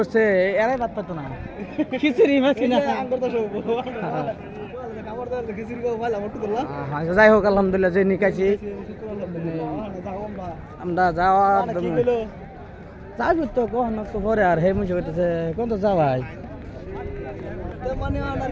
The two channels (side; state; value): both; identical; correlation 1.00